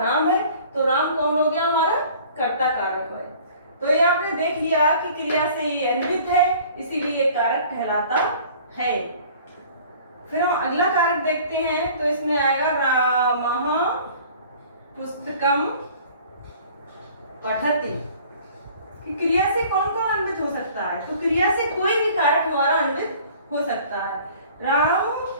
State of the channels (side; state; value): both; inverted; correlation -0.49